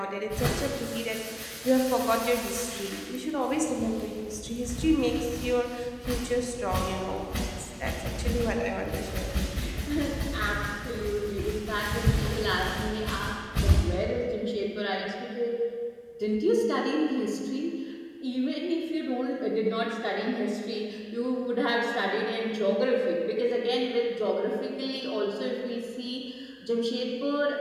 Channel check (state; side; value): identical; both; correlation 1.00